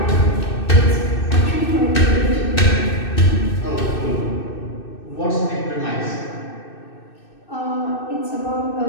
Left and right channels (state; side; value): late; right; 2.6 ms